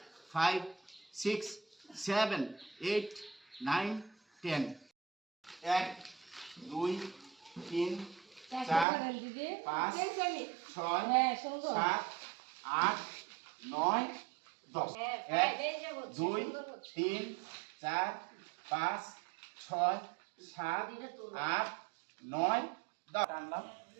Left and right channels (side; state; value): left; drops out; at 8.8 s